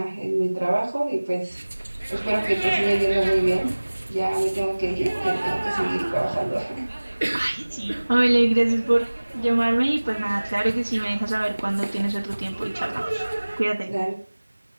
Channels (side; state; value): both; inverted; correlation -1.00